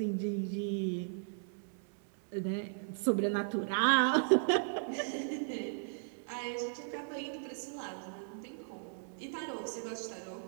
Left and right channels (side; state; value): left; silent; 54 dB below the other